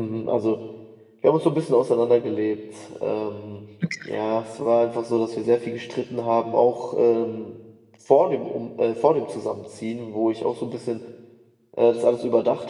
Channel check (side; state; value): both; identical; correlation 1.00